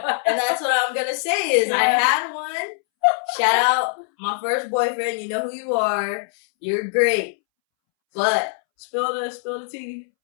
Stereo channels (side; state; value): right; silent; 64 dB below the other